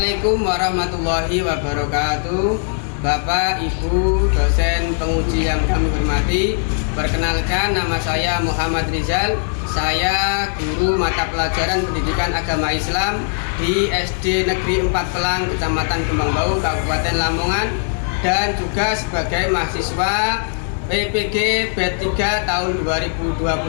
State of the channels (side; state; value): right; silent; 66 dB below the other